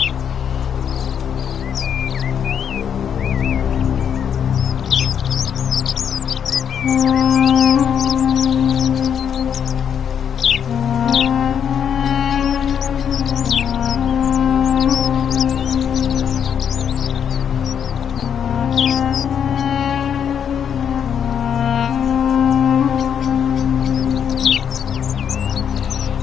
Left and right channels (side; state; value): right; quieter; 8.1 dB